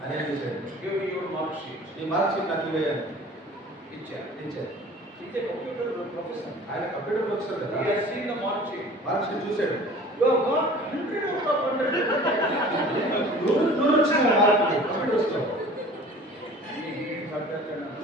ఏం చేశాడు? Give me your mark sheet. ఈ మార్క్ షీట్ నాకు ఇవ్వేయాలి ఇచ్చారు. ఇచ్చారు. He's a computer professor. ఆయన కంప్యూటర్ ప్రొఫెసర్ కదా. He has seen the mark sheet. Mark sheet చూశాడు. You have got 100 out of 100. నూరు వచ్చిన మార్కులు కంప్యూటర్స్ లో He didn't understand.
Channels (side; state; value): both; normal; correlation 0.45